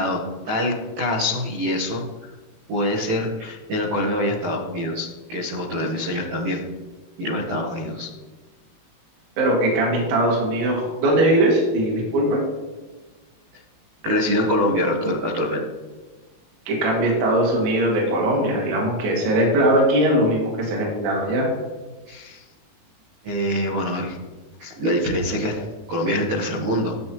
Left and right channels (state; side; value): late; left; 19 ms